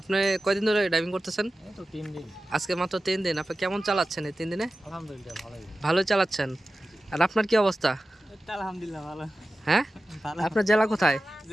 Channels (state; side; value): normal; both; correlation 0.95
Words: কয়দিন ধরে ড্রাইভিং করতেছেন? এই তো 3 দিন। আজকে মাত্র 3 দিন। আপনি কেমন চালাচ্ছেন এই 3 দিনে? আলহামদুলিল্লাহ ভালোই। ভালোই চালাচ্ছেন। আর আপনার কি অবস্থা? আলহামদুলিল্লাহ ভালো। হ্যাঁ, ভালো। আপনার জেলা কোথায়?